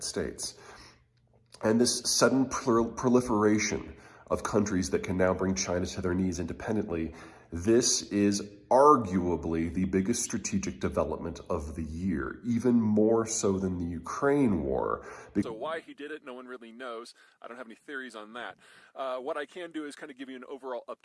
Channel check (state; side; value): identical; both; correlation 1.00